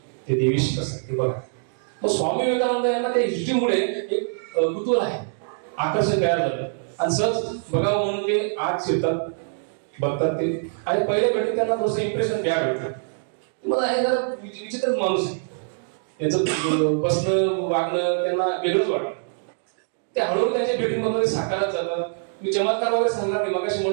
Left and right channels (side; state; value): left; silent; digital silence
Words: ते देवीशी कसं ते बघा. मग स्वामी विवेकानंद यांना त्या हिस्ट्रीमुळे एक कुतूहल आहे, आकर्षण तयार झालं. आणि सहज बघावं म्हणून ते आत शिरतात, बघतात ते. आणि पहिल्या भेटीत त्यांना थोडंसं इम्प्रेशन द्या भेटतं. मला हे जरा विचित्रच माणूस आहे, त्याचं बसणं वागणं त्यांना वेगळंच वाटतं. ते हळूहळू त्यांच्या भेटीमध्ये साकारत जातात. मी चमत्कार वगैरे सांगणार नाही, मगाशी